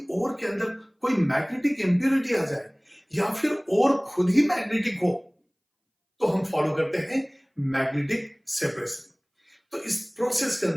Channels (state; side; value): identical; both; correlation 1.00